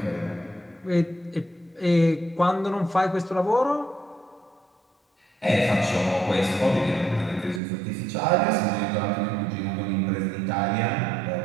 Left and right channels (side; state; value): left; drops out; at 7.6 s